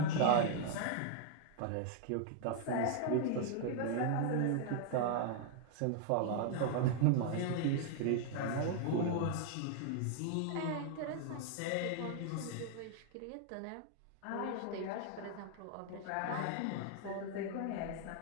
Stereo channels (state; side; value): different; both; correlation 0.00